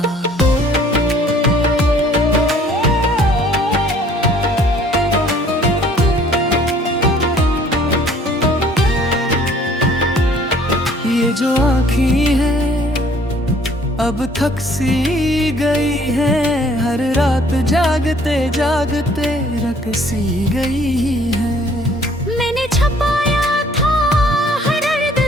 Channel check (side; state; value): both; normal; correlation 0.57